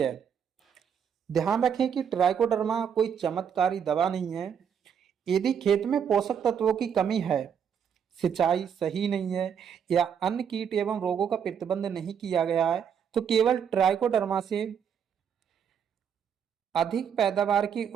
ध्यान रखें कि ट्राइकोडर्मा कोई चमत्कारी दवा नहीं है। यदि खेत में पोषक तत्वों की कमी है, सिंचाई सही नहीं है या अन्य कीट एवं रोगों का प्रतिबंध नहीं किया गया है तो केवल ट्राइकोडर्मा से अधिक पैदावार की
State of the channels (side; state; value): left; quieter; 7.8 dB